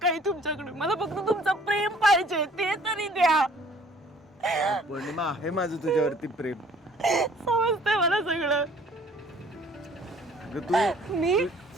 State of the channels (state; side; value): normal; both; correlation 0.56